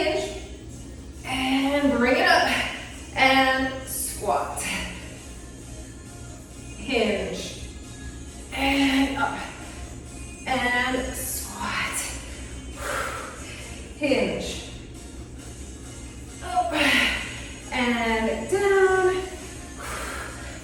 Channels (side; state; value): both; identical; correlation 1.00